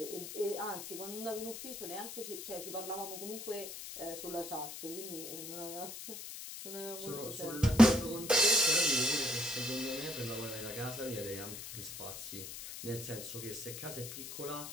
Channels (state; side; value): noise; left; hiss, 9 dB below the sound